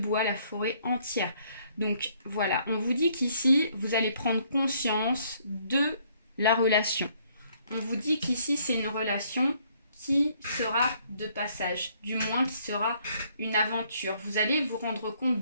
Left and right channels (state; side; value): inverted; both; correlation -0.66